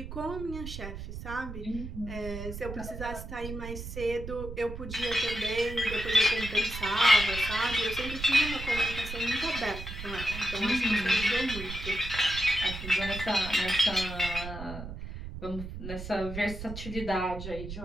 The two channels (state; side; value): noise; right; rumble, 9 dB below the sound